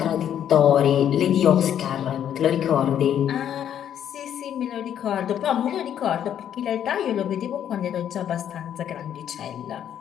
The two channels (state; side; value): quieter; right; 9.8 dB